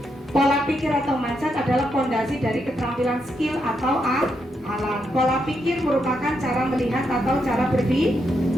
Pola pikir atau mindset adalah fondasi dari keterampilan skill atau alat. Pola pikir merupakan cara melihat atau cara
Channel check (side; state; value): both; normal; correlation 0.81